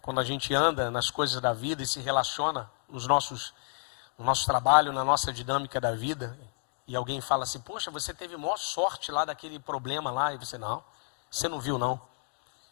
Quando a gente anda nas coisas da vida e se relaciona no nosso trabalho, na nossa dinâmica da vida, e alguém fala assim, poxa, você teve maior sorte lá daquele problema lá, e você não viu não.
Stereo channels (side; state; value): right; silent; 57 dB below the other